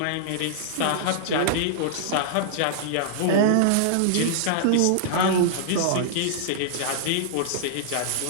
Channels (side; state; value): both; different; correlation -0.01